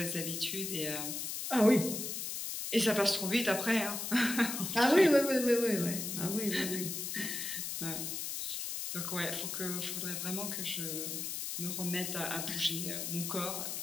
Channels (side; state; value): left; noise; hiss, 4 dB below the sound